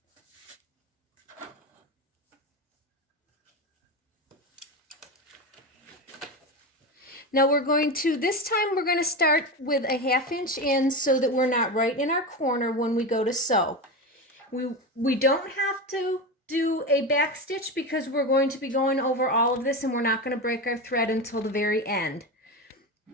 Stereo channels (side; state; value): both; normal; correlation 0.20